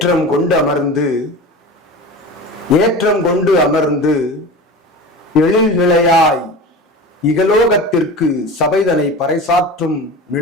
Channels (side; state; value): both; normal; correlation 0.32